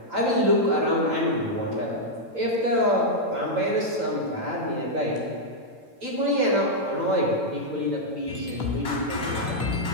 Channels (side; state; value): left; late; 8.9 ms